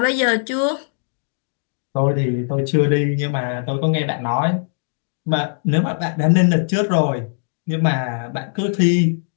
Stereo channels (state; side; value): silent; right; digital silence